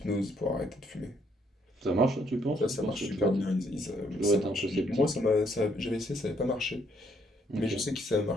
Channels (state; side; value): normal; both; correlation 0.69